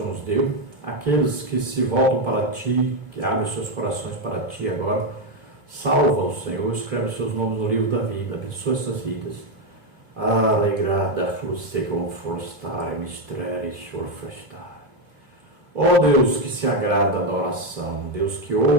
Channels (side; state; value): left; late; 2.7 ms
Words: nos deu. Aqueles que se voltam para Ti, que abrem seus corações para Ti agora, salva-os, Senhor, escreve seus nomes no livro da vida, abençoa essas vidas. Alegrada fosse confortar mistérios orfestar. Ó Deus que se agrada da oração, Deus que